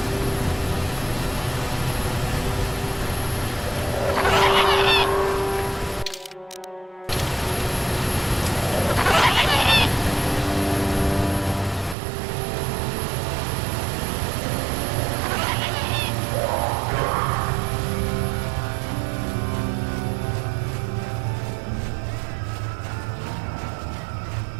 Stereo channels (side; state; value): left; drops out; at 12.0 s